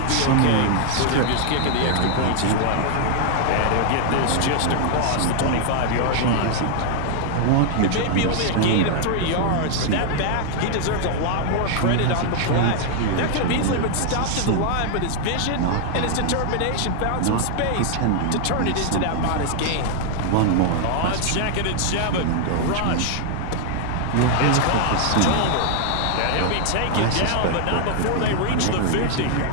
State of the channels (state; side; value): different; both; correlation 0.00